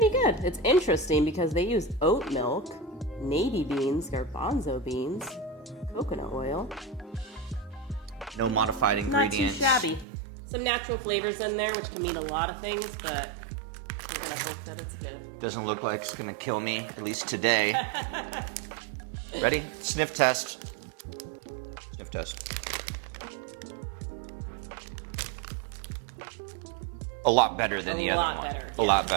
good. It's interesting because they use oat milk, navy beans, garbanzo beans, coconut oil. No modified ingredients. Not too shabby. Some natural flavors in there, which can mean a lot of things, but I'm gonna hope that it's good. Doesn't look like it's gonna kill me, at least today. Ready? Sniff test. Sniff test. A lot better than the other one. A lot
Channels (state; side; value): drops out; left; at 10.1 s